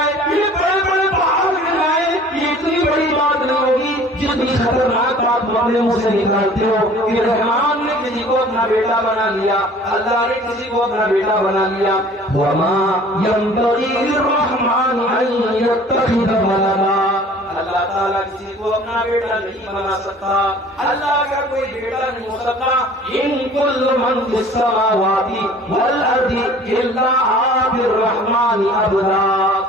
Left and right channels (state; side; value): normal; both; correlation 0.49